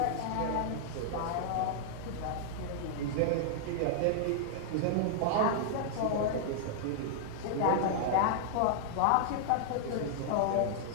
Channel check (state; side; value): different; both; correlation -0.01